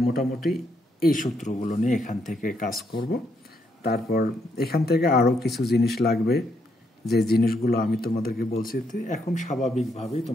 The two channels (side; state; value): both; normal; correlation 0.76